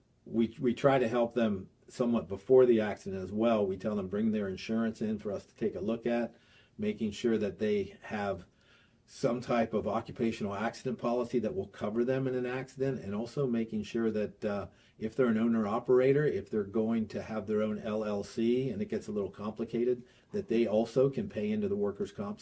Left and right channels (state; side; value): identical; both; correlation 1.00